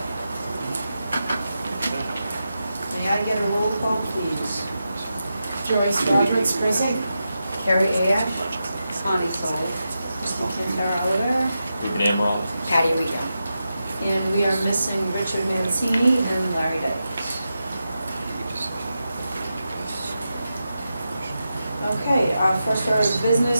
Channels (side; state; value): both; inverted; correlation -0.89